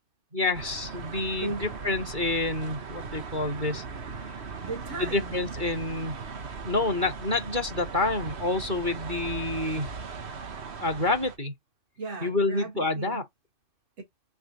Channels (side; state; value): left; late; 2.3 ms